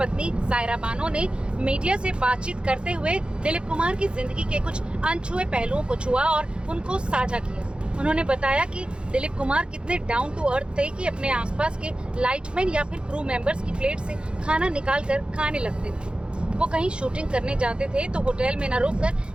सायरा बानो ने मीडिया से बातचीत करते हुए दिलीप कुमार की जिंदगी के कुछ अनछुए पहलुओं को छुआ और उनको साझा किया। उन्होंने बताया कि दिलीप कुमार कितने डाउन टू अर्थ थे कि अपने आसपास के लाइटमैन या फिर क्रू मेंबर्स की प्लेट से खाना निकाल कर खाने लगते थे। वो कहीं शूटिंग करने जाते थे तो होटल में न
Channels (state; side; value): late; left; 0.054 ms